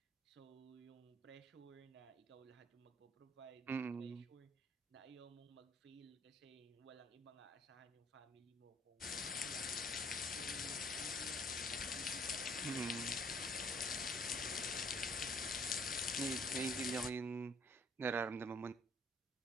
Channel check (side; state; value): both; normal; correlation 0.60